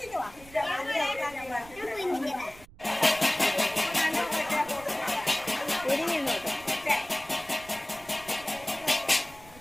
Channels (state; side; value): noise; right; rumble, 21 dB below the sound